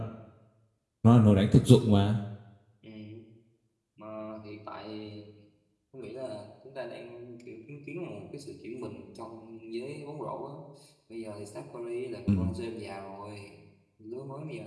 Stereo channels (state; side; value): identical; both; correlation 1.00